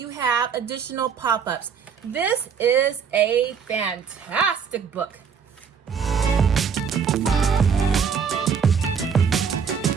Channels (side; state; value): left; quieter; 6.7 dB